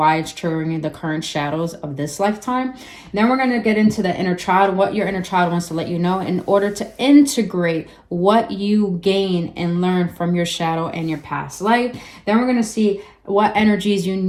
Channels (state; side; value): identical; both; correlation 1.00